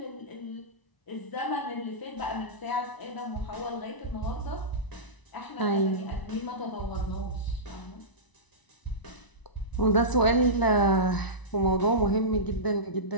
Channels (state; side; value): late; right; 1.0 ms